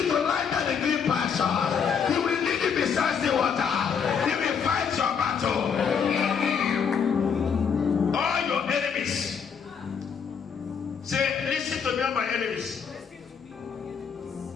to lie down the green pasture. He will lead you beside the water. He will fight your battle. All your enemies. Say, listen to me, all my enemies.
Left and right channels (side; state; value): right; quieter; 6.8 dB